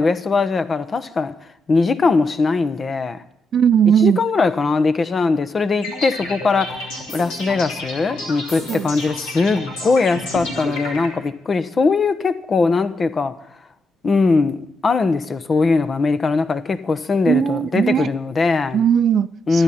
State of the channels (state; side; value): normal; both; correlation 0.82